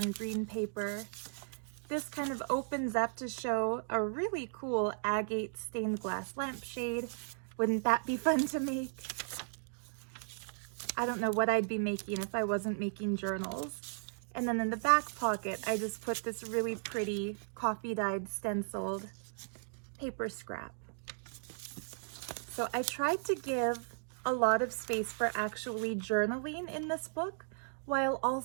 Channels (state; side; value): silent; left; digital silence